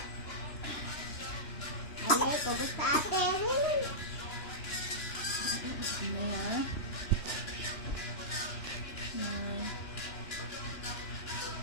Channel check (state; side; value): late; right; 2.9 ms